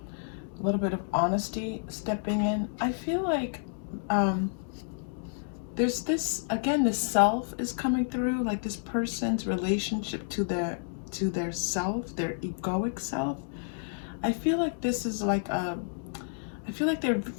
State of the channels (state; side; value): silent; right; digital silence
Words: A little bit of honesty stepping in. I feel like there's this, again, the self is coming through, like this person's relationship to their self, their egoic self. I feel like this is like I feel like they're